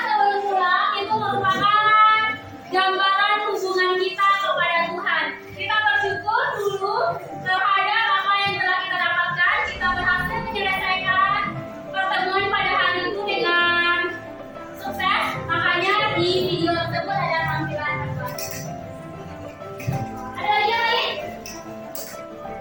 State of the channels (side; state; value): both; identical; correlation 1.00